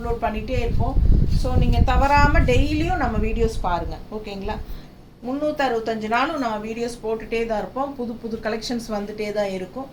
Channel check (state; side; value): identical; both; correlation 1.00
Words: பண்ணிகிட்டே இருப்போம். ஸோ நீங்கள் தவறாமல் டெய்லியும் நம்ம வீடியோஸ் பாருங்கள். ஓகேங்களா? 365 நாளும் நம்ம வீடியோஸ் போட்டுகிட்டே தான் இருப்போம். புது புது கலெக்ஷன்ஸ் வந்துகிட்டே தான் இருக்கும்.